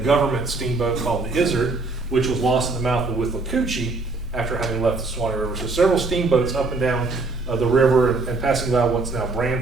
steamboat called the Izzard, which was lost in the mouth of Withlacoochee after having left the Suwannee River. So several steamboats up and down the river and passing by what's now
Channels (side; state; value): left; quieter; 3.6 dB